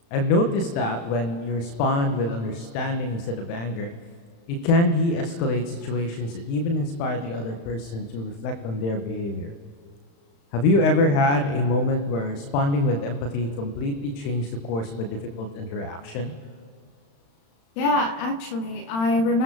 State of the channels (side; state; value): right; late; 35 ms